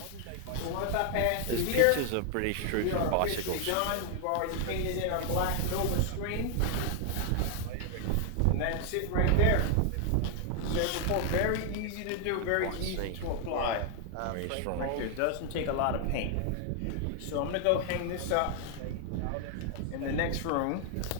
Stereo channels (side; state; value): both; different; correlation 0.00